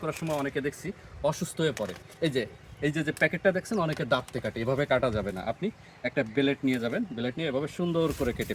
করার সময় অনেকে দেখছি অসুস্থ হয়ে পড়ে। এই যে প্যাকেটটা দেখছেন, অনেকে দাঁতে কাটে, এভাবে কাটা যাবে না। আপনি একটা ব্লেড নিয়ে যাবেন, ব্লেড নিয়ে এভাবে সুন্দর করে কেটে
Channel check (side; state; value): both; identical; correlation 1.00